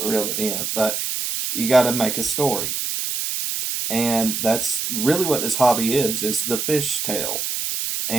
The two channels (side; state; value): right; noise; hiss, 2 dB below the sound